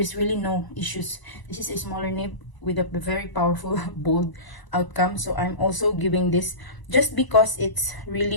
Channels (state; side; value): late; right; 1.0 ms